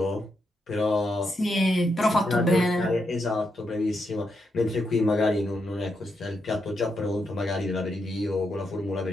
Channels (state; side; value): normal; both; correlation 0.82